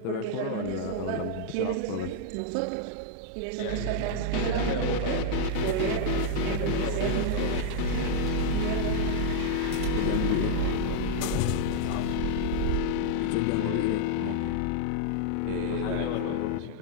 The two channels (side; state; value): both; different; correlation -0.01